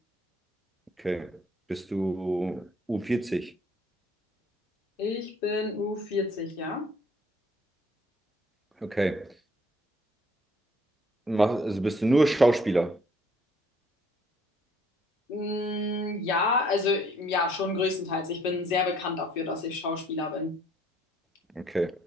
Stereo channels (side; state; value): both; normal; correlation 0.62